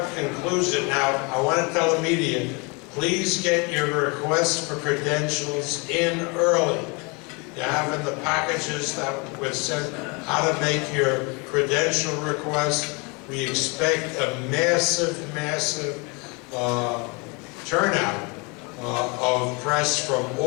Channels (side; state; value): right; quieter; 30.1 dB